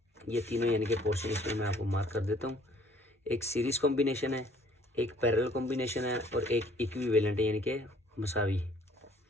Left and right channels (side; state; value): both; normal; correlation 0.58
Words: ये तीनों यानी कि पोर्शन इसमें मैं आपको मार्क कर देता हूँ। एक सीरीज़ कॉम्बिनेशन है, एक पैरेलल कॉम्बिनेशन है और एक इक्विवेलेंट है यानी कि मसावी।